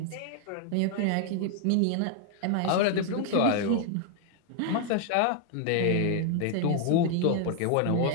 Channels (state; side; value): different; both; correlation 0.00